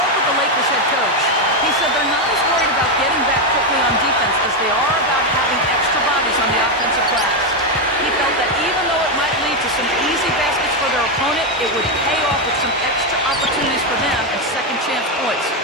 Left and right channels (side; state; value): both; normal; correlation 0.06